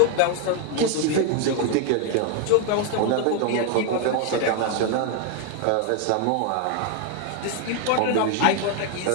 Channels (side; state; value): both; different; correlation 0.01